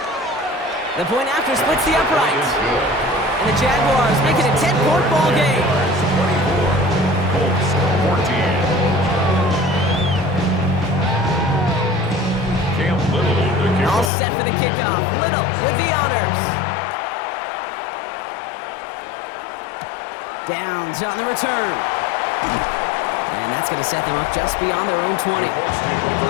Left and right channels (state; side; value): drops out; right; at 14.1 s